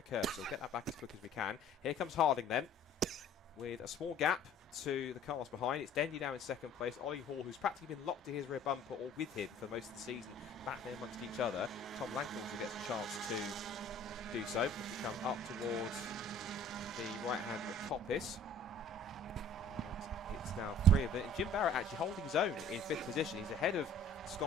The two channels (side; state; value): both; normal; correlation 0.51